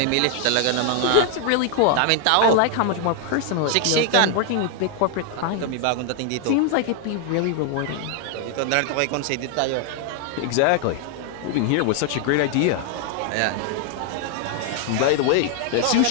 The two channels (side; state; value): both; different; correlation 0.00